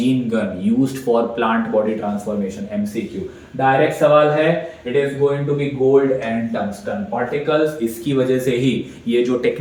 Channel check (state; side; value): identical; both; correlation 1.00